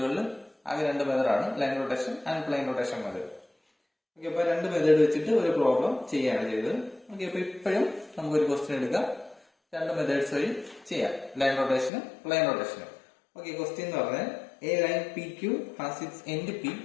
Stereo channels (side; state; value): right; drops out; at 11.9 s